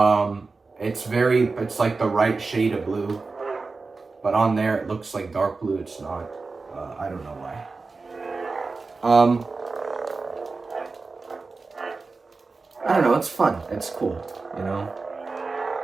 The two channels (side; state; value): left; quieter; 4.0 dB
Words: It's like the right shade of blue. But on there it looks like dark blue. It's not. I don't know why. I don't know, it's fun. It's cool, you know?